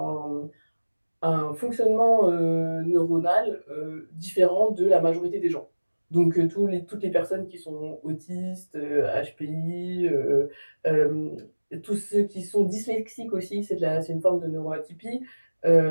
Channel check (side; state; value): both; inverted; correlation -1.00